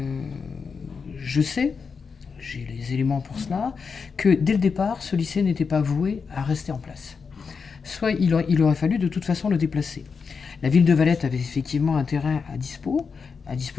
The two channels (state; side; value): quieter; right; 5.5 dB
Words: sais, j'ai les éléments pour cela, que dès le départ, ce lycée n'était pas voué à rester en place. Soit il aurait fallu de toute façon le déplacer. La ville de Valette avait effectivement un terrain à